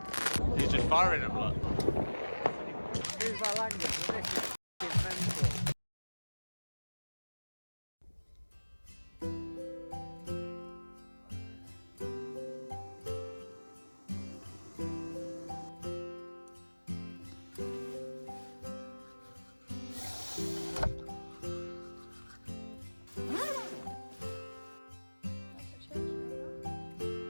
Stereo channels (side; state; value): both; inverted; correlation -1.00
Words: He's just firing them, look. Excuse my language, but this is mental.